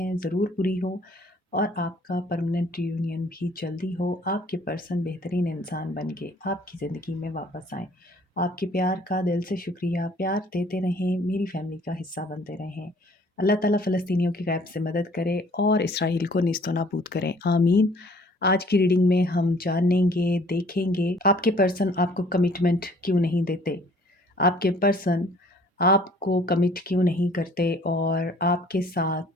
ज़रूर पूरी हो और आपका परमानेंट रियूनियन भी जल्दी हो। आपके पर्सन बेहतरीन इंसान बन के आपकी ज़िंदगी में वापस आएँ। आपके प्यार का दिल से शुक्रिया। प्यार देते रहें, मेरी फैमिली का हिस्सा बनते रहें। अल्लाह ताला फ़लस्तीनियों की गैब से मदद करे और इसराइल को नीस्तो नाबूद करें, आमीन। आज की रीडिंग में हम जानेंगे, देखेंगे आपके पर्सन आपको कमिटमेंट क्यों नहीं देते, आपके पर्सन आपको कमिट क्यों नहीं करते और आपके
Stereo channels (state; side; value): normal; both; correlation 0.56